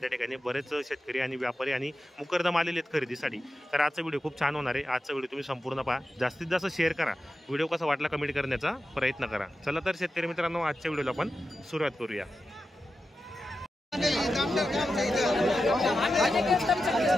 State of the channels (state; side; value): normal; both; correlation 0.91